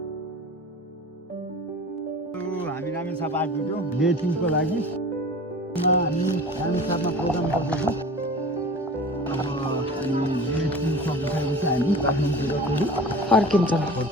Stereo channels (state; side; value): normal; both; correlation 0.39